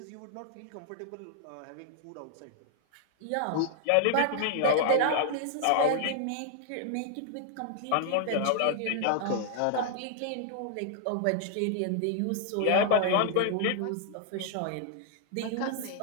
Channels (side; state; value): both; different; correlation -0.01